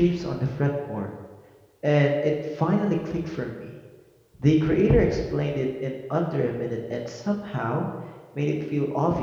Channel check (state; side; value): identical; both; correlation 1.00